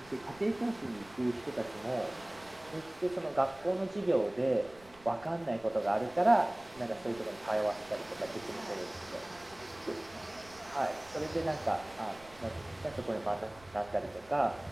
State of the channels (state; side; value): noise; right; rumble, 24 dB below the sound